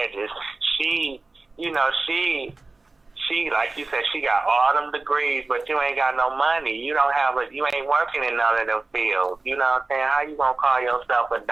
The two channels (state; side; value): quieter; left; 3.5 dB